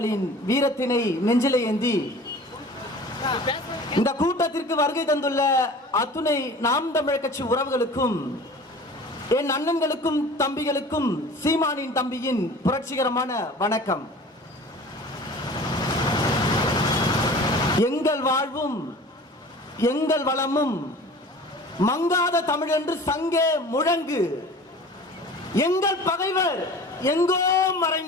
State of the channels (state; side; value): normal; both; correlation 0.42